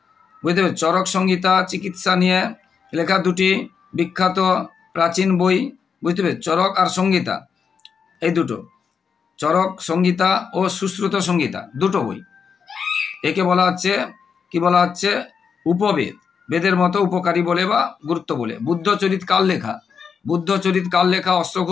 বুঝতে পেরেছ? চরক সংহিতা চিকিৎসা নিয়ে লেখা দুটি বিখ্যাত প্রাচীন বই, বুঝতে পেরেছ? চরক আর সংহিতা, এই দুটো, চরক সংহিতা ও সুশ্রুত সংহিতা, দুটো বই। একে বলা হচ্ছে উপবেদ, বেদের মতো উপকারী বলে বা গুরুত্ব বলে। বুদ্ধচরিত কার লেখা?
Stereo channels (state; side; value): quieter; right; 6.3 dB